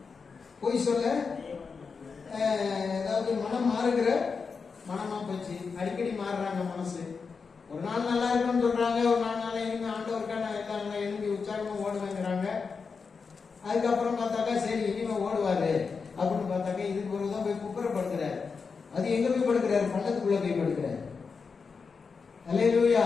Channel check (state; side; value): quieter; right; 5.2 dB